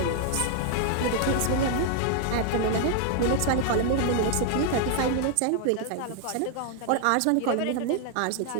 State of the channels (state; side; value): different; both; correlation 0.00